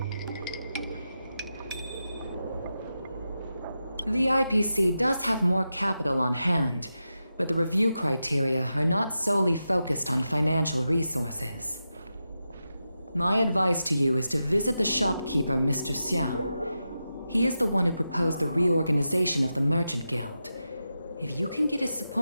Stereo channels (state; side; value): inverted; both; correlation -0.89